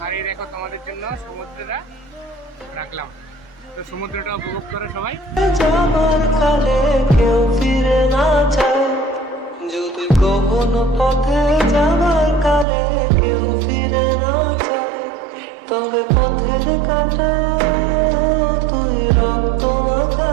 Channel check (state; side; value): drops out; left; at 12.7 s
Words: আর এই দেখো তোমাদের জন্য সমুদ্রটা রাখলাম, তো সমুদ্রটা উপভোগ করো সবাই। যাবার কালে কেউ ফিরে না চায়, যদি কখনো পথে যাবার কালে কেউ ফিরে না চায়, তবে পথের কাটা তুই রক্ত মাখা